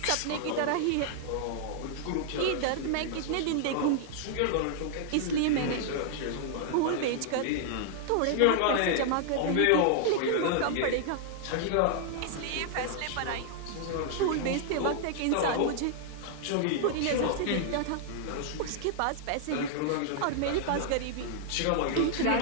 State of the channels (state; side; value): different; both; correlation -0.01